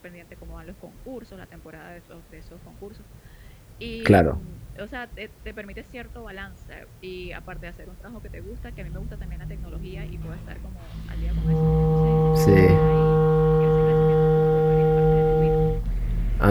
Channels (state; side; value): identical; both; correlation 1.00